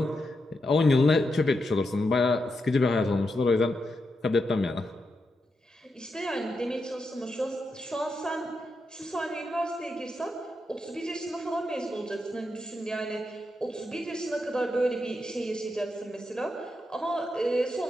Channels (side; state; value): both; normal; correlation 0.85